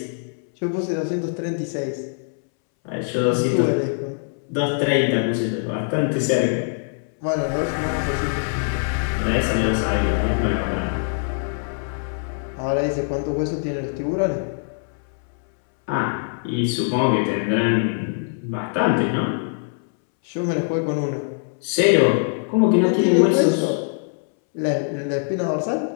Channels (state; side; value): silent; right; 64 dB below the other